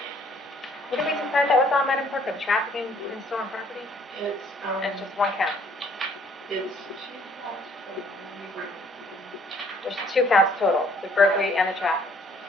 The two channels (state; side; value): normal; both; correlation 0.61